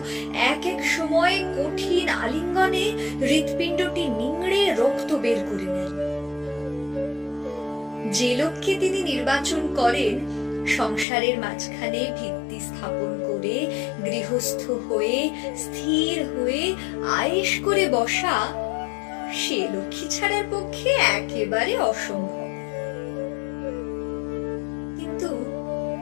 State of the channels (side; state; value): right; drops out; at 11.1 s